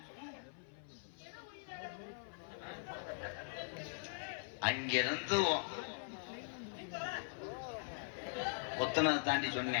அங்கிருந்து ஒத்தனதை தாண்டி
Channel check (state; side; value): silent; right; 50 dB below the other